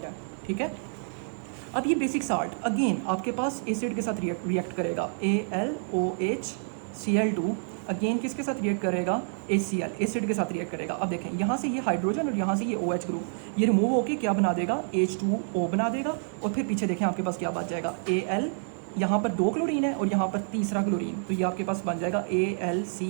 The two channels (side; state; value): left; silent; digital silence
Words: है। ठीक है, अब ये बेसिक साल्ट अगेन आपके पास एसिड के साथ रिएक्ट करेगा, AlOHCl2 अगेन किसके साथ रिएक्ट करेगा? HCl, एसिड के साथ रिएक्ट करेगा। अब देखें यहाँ से ये हाइड्रोजन और यहाँ से ये OH ग्रुप, ये रिमूव होकर क्या बना देगा? H2O बना देगा। और फिर पीछे देखें आपके पास क्या बच जाएगा? Al, यहाँ पर 2 क्लोरीन है और यहाँ पर तीसरा क्लोरीन, तो ये आपके पास बन जाएगा